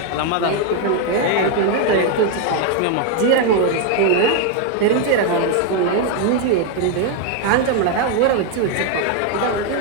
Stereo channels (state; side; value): different; both; correlation 0.01